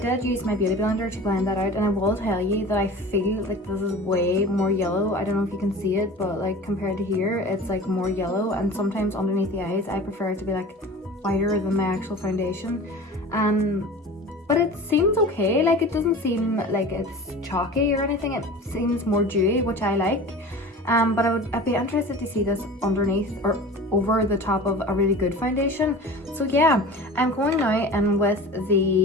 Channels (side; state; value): both; normal; correlation 0.37